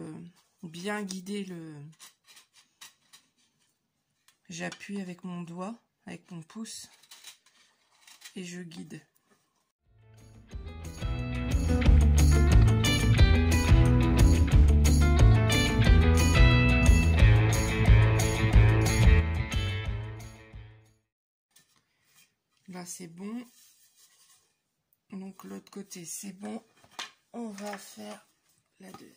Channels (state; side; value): identical; both; correlation 1.00